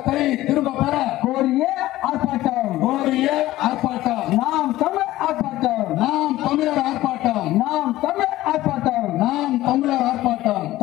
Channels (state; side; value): quieter; right; 16.0 dB